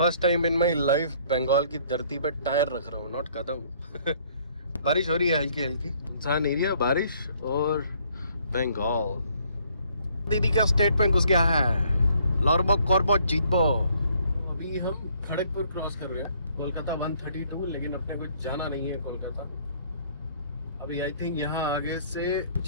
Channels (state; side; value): inverted; both; correlation -0.63